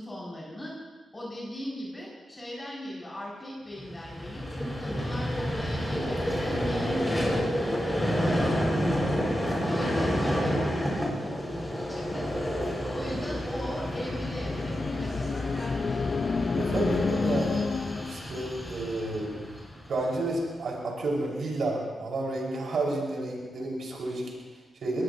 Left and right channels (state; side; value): normal; both; correlation 0.88